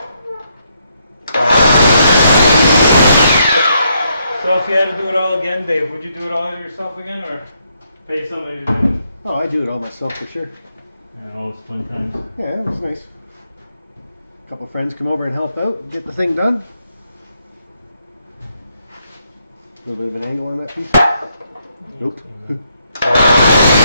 So if you had to do it all again, Dave, would you do it all yourself again, or pay somebody to do it? Oh, I do it all myself for sure. Yeah, all those fun times. Yeah, it was nice. A couple friends come over and help out, get the thing done. A little bit of an angle on that piece. Nope.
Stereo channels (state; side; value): inverted; both; correlation -0.76